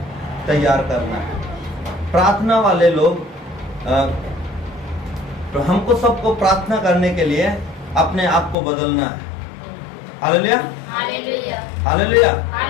तैयार करना है। प्रार्थना वाले लोग तो हमको सबको प्रार्थना करने के लिए अपने आप को बदलना है। हालेलुया। हालेलुया।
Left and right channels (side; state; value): right; drops out; at 8.6 s